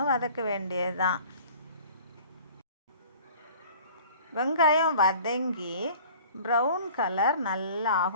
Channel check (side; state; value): both; inverted; correlation -0.47